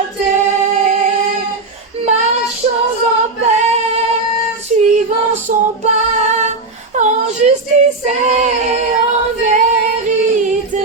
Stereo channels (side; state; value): left; quieter; 3.5 dB